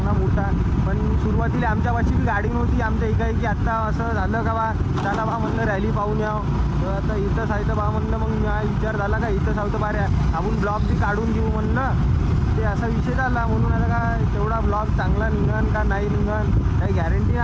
मोठा. पण सुरुवातीला आमच्यापाशी बी गाडी नव्हती आमच्या एकाएकी. आत्ता असं झालं का बा चला बा म्हणलं रॅली पाहून यावं. तर आता इथंच आहे तर बा म्हणलं, मग विचार झाला का इथंच आहोत बारे आपण ब्लॉग बी काढून घेऊ म्हणलं. ते असा विषय झाला म्हणून आता काय तेवढा ब्लॉग चांगला निघन का नाही निघन काही गॅरंटी नाही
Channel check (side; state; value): both; identical; correlation 1.00